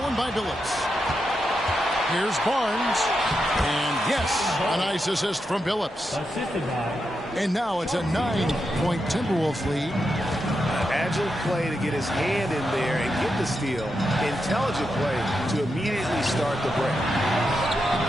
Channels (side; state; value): both; normal; correlation 0.86